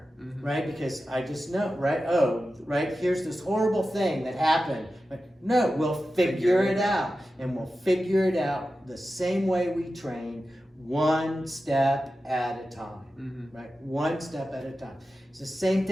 right? Because I just know, right? Oh, right, here's this horrible thing that happened. But no, we'll figure it out. And we'll figure it out the same way we train, one step at a time, right? One step at a time. It's the same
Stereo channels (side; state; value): both; normal; correlation 0.93